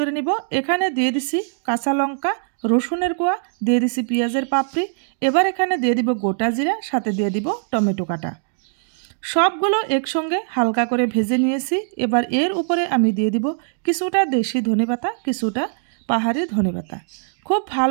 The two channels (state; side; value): silent; left; digital silence